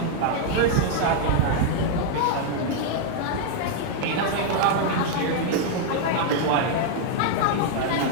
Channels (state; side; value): different; both; correlation 0.00